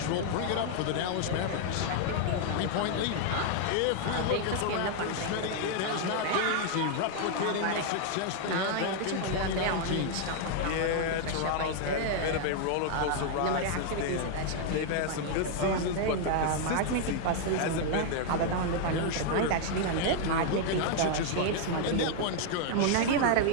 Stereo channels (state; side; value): different; both; correlation 0.00